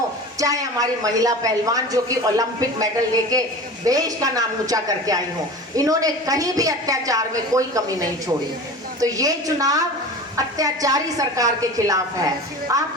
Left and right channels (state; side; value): normal; both; correlation 0.34